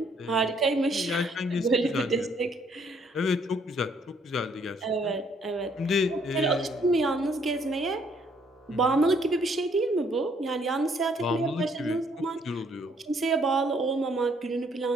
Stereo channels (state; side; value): normal; both; correlation 0.66